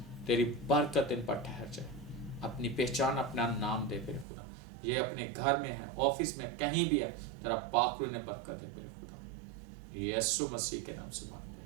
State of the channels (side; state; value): left; drops out; at 4.2 s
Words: تیری برکت ان پر ٹھہر جائے. اپنی پہچان اپنا نام دے میرے خدا. یہ اپنے گھر میں ہے، آفس میں، کہیں بھی ہے، تیرا پاک روح نے برکت ہے میرے خدا. یسوع مسیح کے نام سے مانگتے